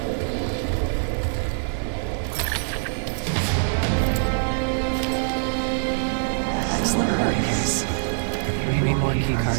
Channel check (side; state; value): left; silent; digital silence